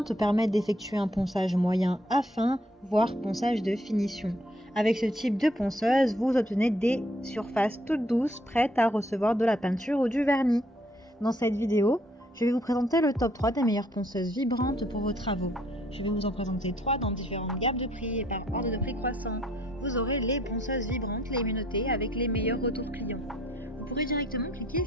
permettent d'effectuer un ponçage moyen à fin, voire ponçage de finition. Avec ce type de ponceuse, vous obtenez des surfaces toutes douces, prêtes à recevoir de la peinture ou du vernis. Dans cette vidéo, je vais vous présenter le top 3 des meilleures ponceuses vibrantes pour vos travaux. Je vais vous en présenter 3 dans différentes gammes de prix et par ordre de prix croissant. Vous aurez les ponceuses vibrantes, les menottées avec les meilleurs retours clients. Vous pourrez directement cliquer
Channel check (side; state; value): both; normal; correlation 0.65